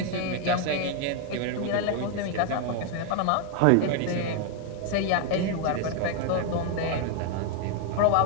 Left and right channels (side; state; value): both; different; correlation 0.01